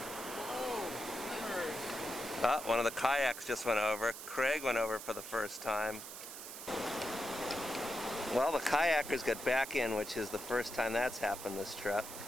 Ah, one of the kayaks just went over. Craig went over for the first time. Well, the kayakers got back in, which is the first time that's happened this trip.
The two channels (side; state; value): right; noise; hiss, 10 dB below the sound